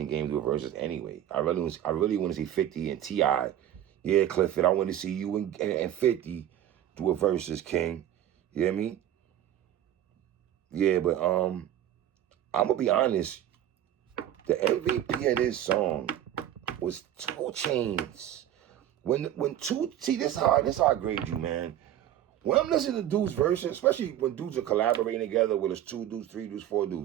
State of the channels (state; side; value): quieter; left; 11.5 dB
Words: Game do verses anyway. I really want to see 50 and T.I. Yeah, Clifford, I want to see you and 50 do a versus, King. You know what I mean? Yeah, but I'm gonna be honest. The MVP of this song was 2 Chainz. See, this is how I grade you, man. When I'm listening to dudes' verses, especially when dudes are collaborating together, whether it's 2 dudes, 3 dudes, 4